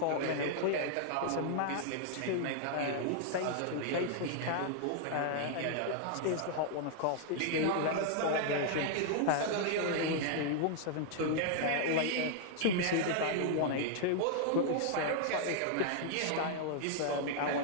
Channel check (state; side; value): different; both; correlation -0.01